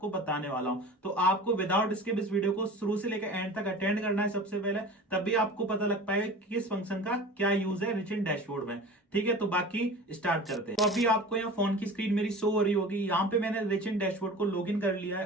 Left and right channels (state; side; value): normal; both; correlation 0.37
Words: बताने वाला हूं। तो आपको विदाउट स्किप इस वीडियो को शुरू से लेकर एंड तक अटेंड करना है सबसे पहले, तभी आपको पता लग पाएगा कि किस फंक्शन का क्या यूज है रिच इन डैशबोर्ड में। ठीक है, तो बाकी स्टार्ट करते हैं। तो अभी आपको यहाँ फोन की स्क्रीन मेरी शो हो रही होगी। यहाँ पे मैंने रिच इन डैशबोर्ड को लॉगिन कर लिया है